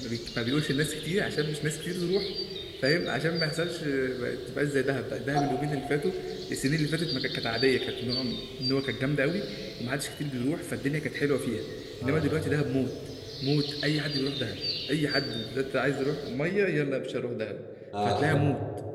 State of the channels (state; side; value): identical; both; correlation 1.00